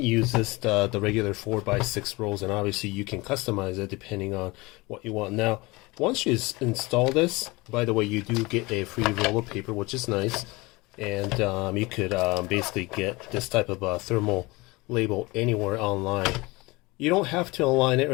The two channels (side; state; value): right; quieter; 23.4 dB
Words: the regular 4x6 rolls, and obviously you can customize it depending on what you want. Now, once you install this, by the way, you do get a free roll of paper, which is nice, and you could basically get this type of thermal label anywhere online. You don't have to align it or